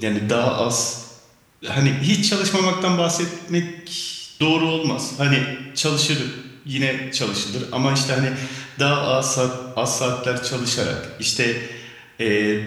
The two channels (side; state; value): both; identical; correlation 1.00